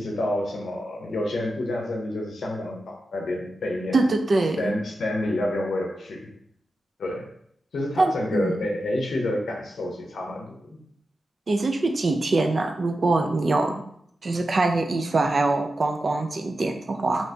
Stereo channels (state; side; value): normal; both; correlation 0.90